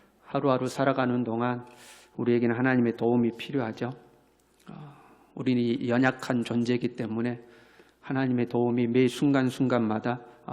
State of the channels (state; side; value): identical; both; correlation 1.00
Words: 하루하루 살아가는 동안 우리에게는 하나님의 도움이 필요하죠. 우리는 연약한 존재이기 때문에 하나님의 도움이 매 순간순간마다